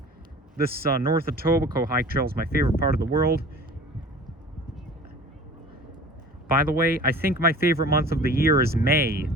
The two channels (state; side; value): normal; both; correlation 0.42